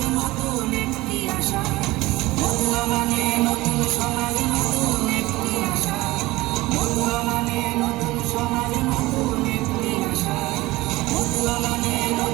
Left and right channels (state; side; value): quieter; left; 19.5 dB